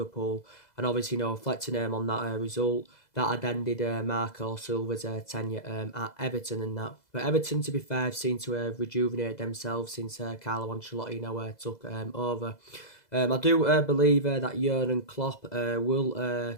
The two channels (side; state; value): right; late; 2.0 ms